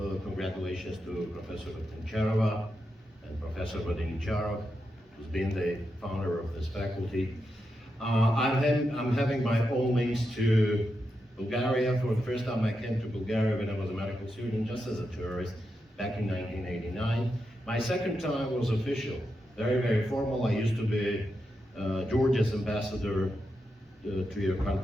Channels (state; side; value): normal; both; correlation 0.86